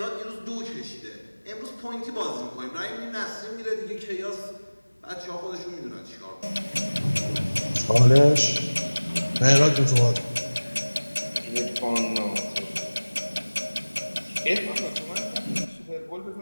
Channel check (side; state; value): both; inverted; correlation -1.00